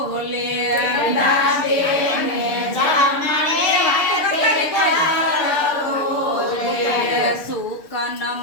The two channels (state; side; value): late; right; 6.8 ms